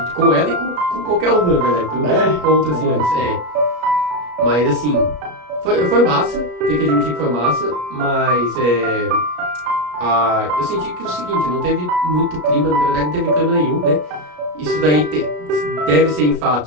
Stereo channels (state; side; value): late; left; 33 ms